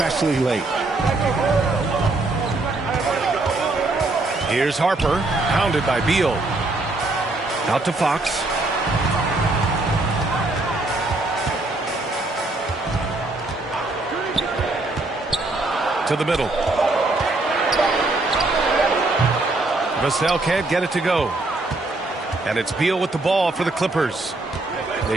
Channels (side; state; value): left; quieter; 3.0 dB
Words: late. Here's Harper, pounded by Beal. Out to Fox. to the middle. Vassell can't get it to go. And it's Beal with the ball for the Clippers. They